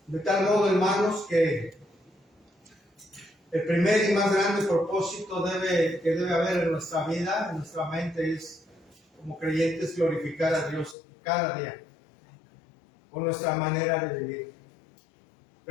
De tal modo, hermanos, que el primer y más grande propósito que debe haber en nuestra vida, en nuestra mente, es, como creyentes, glorificar a Dios cada día con nuestra manera de vivir.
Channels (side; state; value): right; drops out; at 11.0 s